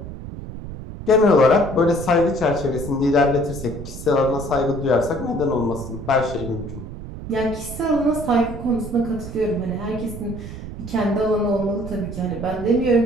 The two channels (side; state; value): right; noise; rumble, 10 dB below the sound